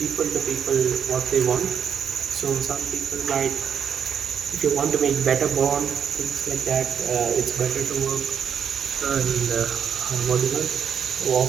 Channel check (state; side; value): quieter; left; 7.7 dB